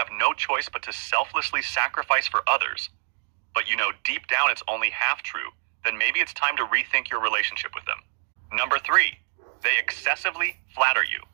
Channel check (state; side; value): silent; left; 61 dB below the other